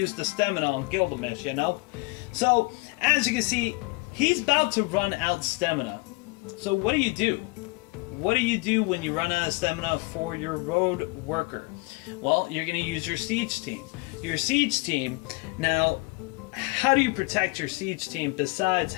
the stamina on Gilgamesh, you know. So as you can see, he's about to run out stamina. So what do you do? What do you do when you run out of stamina for your road worker? Well, you're gonna use your siege team. Your siege team. Now, how do you protect your siege team besides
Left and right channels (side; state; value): right; quieter; 25.7 dB